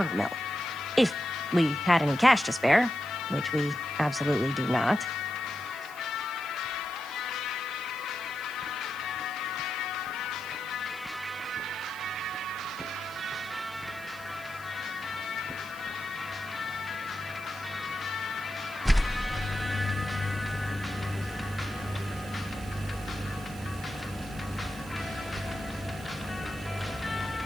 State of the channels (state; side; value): noise; right; hiss, 19 dB below the sound